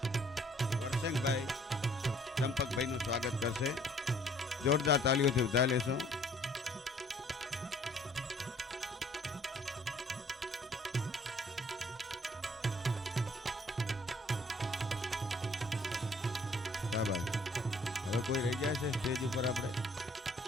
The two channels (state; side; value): normal; both; correlation 0.59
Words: વરસંગભાઈ ચંપકભાઈનું સ્વાગત કરશે. જોરદાર તાલીઓથી વધારી લેશો. હવે કોઈ રહી જાય છે સ્ટેજ ઉપર? આપણે